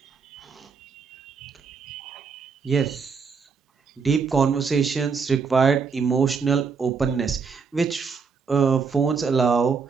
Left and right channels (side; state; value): left; quieter; 5.5 dB